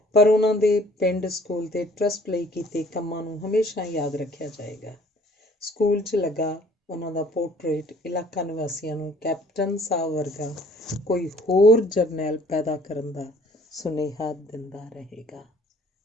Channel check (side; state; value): both; normal; correlation 0.56